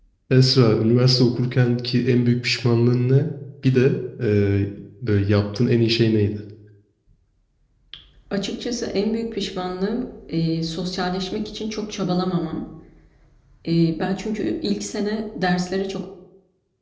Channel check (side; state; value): both; identical; correlation 1.00